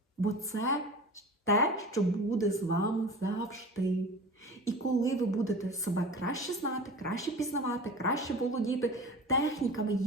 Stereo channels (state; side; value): normal; both; correlation 0.36